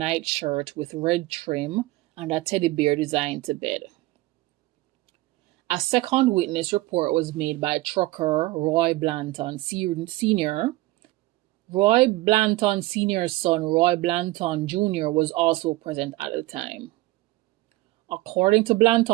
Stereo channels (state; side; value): quieter; left; 19.2 dB